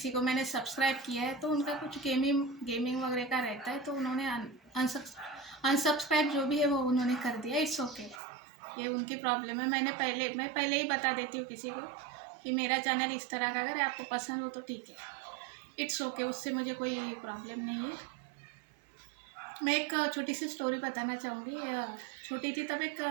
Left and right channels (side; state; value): left; drops out; at 8.2 s